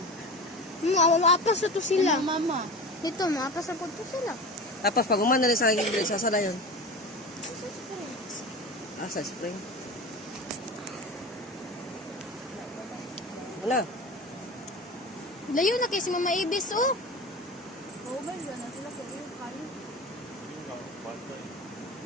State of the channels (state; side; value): normal; both; correlation 0.31